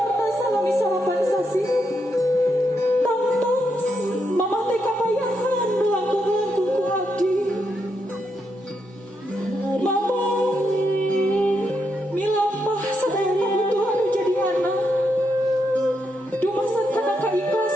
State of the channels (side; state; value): both; normal; correlation 0.81